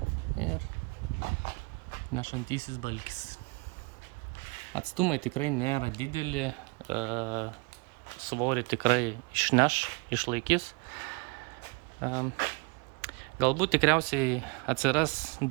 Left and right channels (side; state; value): left; quieter; 30.0 dB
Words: ir nešantysis balkis. Atstumai tikrai nėra dideli, svorį tikrai išneš, išlaikys. Galbūt tikriausiai atsiras